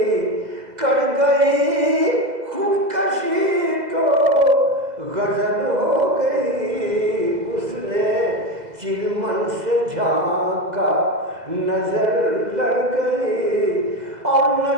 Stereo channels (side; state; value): left; late; 2.0 ms